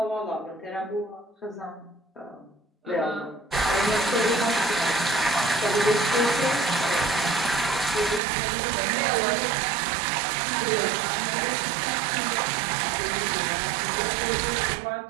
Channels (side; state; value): left; drops out; at 8.2 s